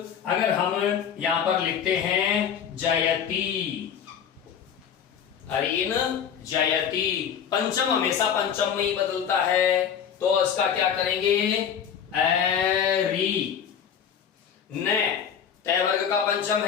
हम यहां पर लिखते हैं जयती, अरीन जयती, पंचम हमेशा पंचम में ही बदलता है, तो इसका क्या करेंगे? एरी। न तय वर्ग का पंचम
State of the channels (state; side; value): quieter; right; 8.0 dB